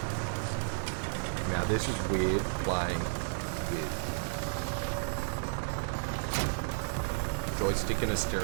Now this is weird playing with joystick and a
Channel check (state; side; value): silent; left; digital silence